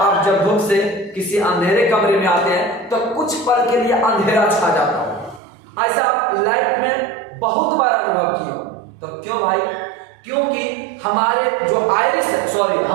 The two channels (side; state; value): left; drops out; at 5.4 s